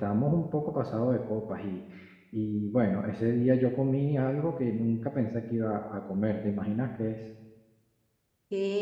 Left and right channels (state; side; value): identical; both; correlation 1.00